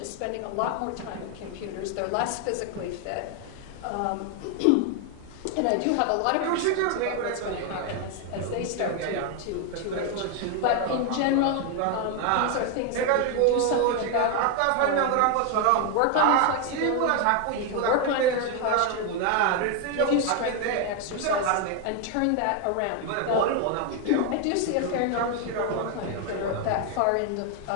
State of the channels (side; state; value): both; different; correlation 0.01